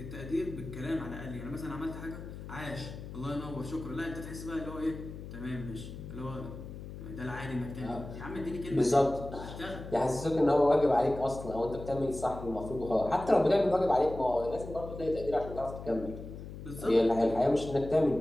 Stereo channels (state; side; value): noise; left; hum, 11 dB below the sound